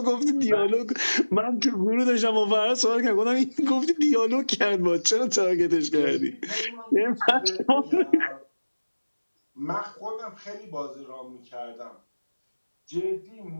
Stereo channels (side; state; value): both; inverted; correlation -1.00